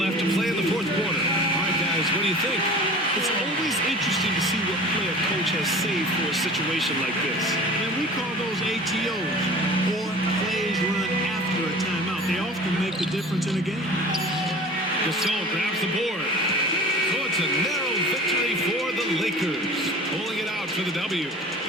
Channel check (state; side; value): normal; both; correlation 0.41